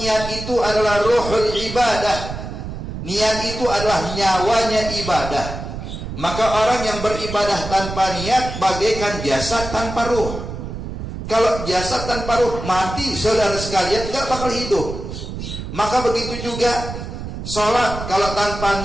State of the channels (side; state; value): right; noise; rumble, 8 dB below the sound